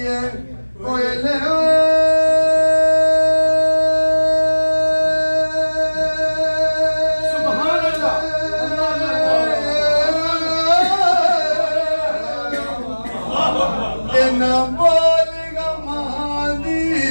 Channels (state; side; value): inverted; both; correlation -1.00